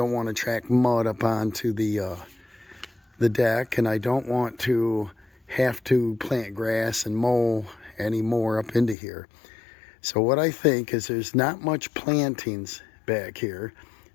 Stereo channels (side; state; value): right; drops out; at 9.0 s